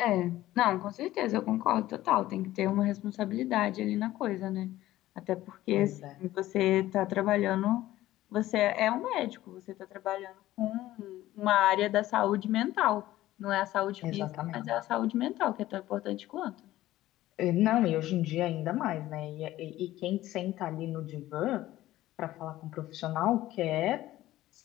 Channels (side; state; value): right; quieter; 15.3 dB